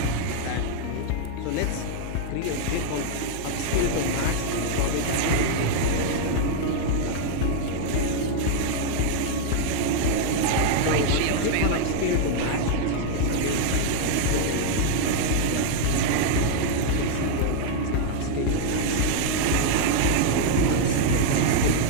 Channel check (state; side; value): different; both; correlation 0.00